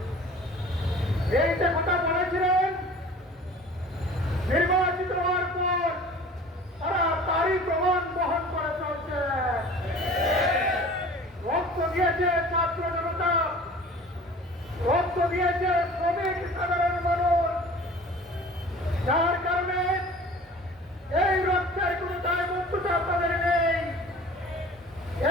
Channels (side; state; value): both; normal; correlation 0.44